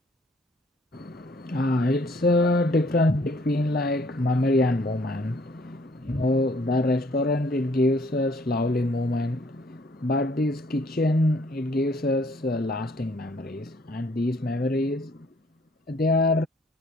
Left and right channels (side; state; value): both; normal; correlation 0.61